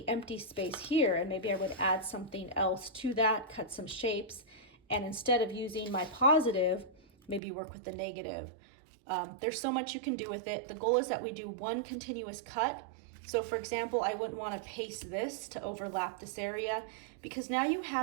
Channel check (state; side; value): drops out; left; at 7.4 s